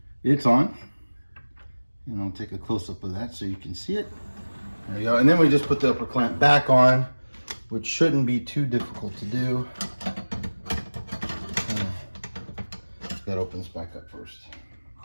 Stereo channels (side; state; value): both; inverted; correlation -1.00